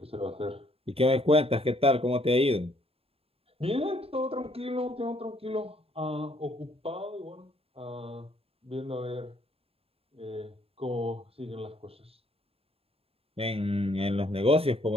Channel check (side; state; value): left; late; 0.28 ms